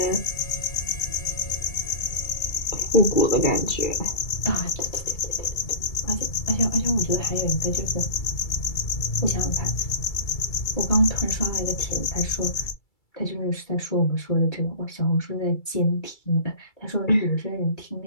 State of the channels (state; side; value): late; right; 2.3 ms